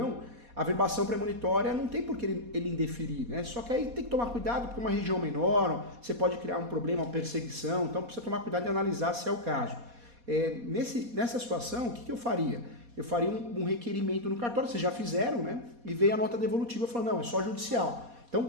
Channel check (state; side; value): late; left; 4.2 ms